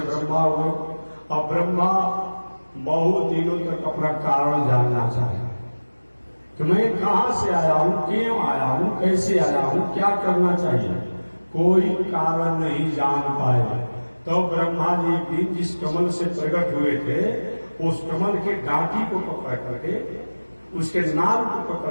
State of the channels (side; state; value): both; inverted; correlation -1.00